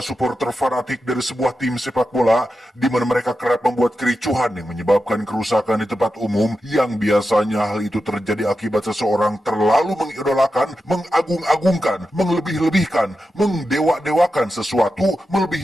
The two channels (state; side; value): normal; both; correlation 0.90